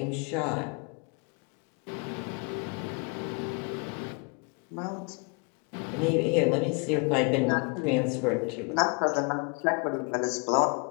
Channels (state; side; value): quieter; right; 33.9 dB